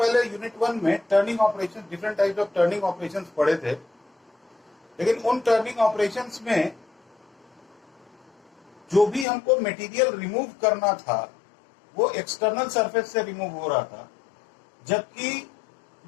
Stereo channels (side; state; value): right; drops out; at 9.2 s